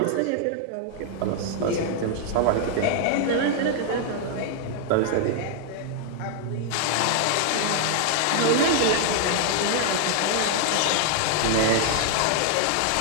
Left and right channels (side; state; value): both; different; correlation 0.00